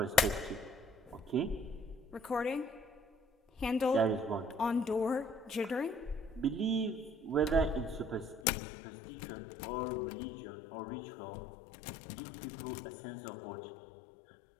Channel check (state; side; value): drops out; right; at 8.4 s